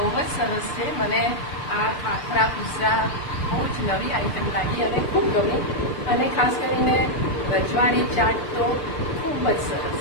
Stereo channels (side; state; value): right; late; 6.7 ms